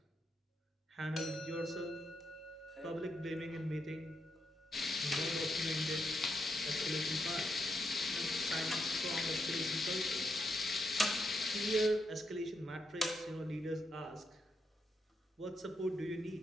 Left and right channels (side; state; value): both; normal; correlation 0.80